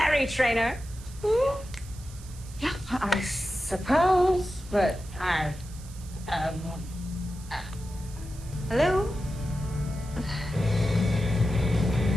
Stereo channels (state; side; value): noise; right; hiss, 20 dB below the sound